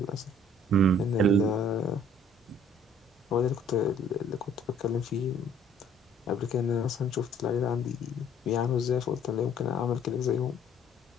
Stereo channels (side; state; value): both; normal; correlation 0.58